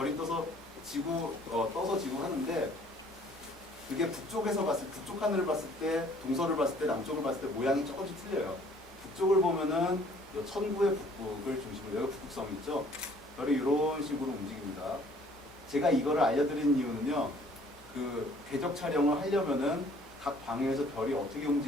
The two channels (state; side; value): normal; both; correlation 0.57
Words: 떠서 지구, 떠서 지구 하는데 그게 북쪽 하늘을 봤을 때, 동서를 봤을 때, 남쪽을 봤을 때 모양이 조금씩 틀려요. 북쪽을 보면은 요 천구의 북극을 중심으로, 여기 북극성이 있죠. 별이 이런 식으로 움직입니다. 제가 이거를 알려드린 이유는요, 그 궤적 촬영을 하려면은 각 방향에서 별이 어떻게